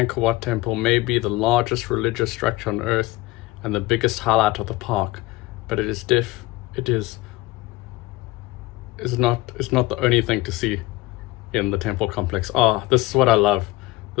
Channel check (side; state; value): right; quieter; 19.0 dB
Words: Wat temple, may be the largest religious structure on earth and the biggest highlight of the park, but it is not the only thing to see in the temple complex. This is what I love.